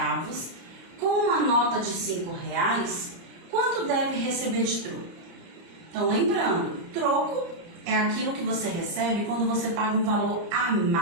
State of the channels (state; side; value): late; left; 30 ms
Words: com uma nota de R$ 5,00, quanto deve receber de troco? Então lembrando, troco é aquilo que você recebe quando você paga um valor a